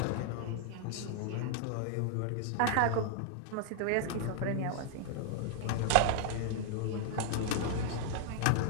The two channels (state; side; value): different; both; correlation 0.00